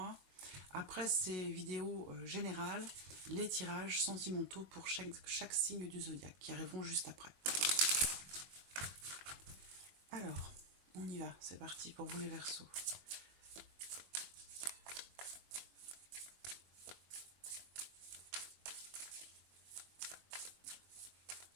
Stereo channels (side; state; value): left; late; 21 ms